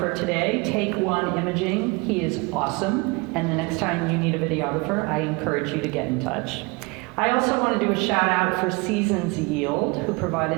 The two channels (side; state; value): left; quieter; 27.4 dB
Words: today. Take One Imaging. He is awesome, and the next time you need a videographer, I encourage you to get in touch. I also want to do a shout out for Seasons Yield, who